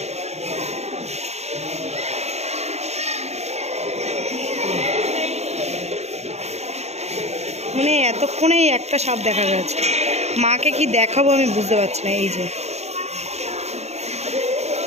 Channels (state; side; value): late; left; 0.31 ms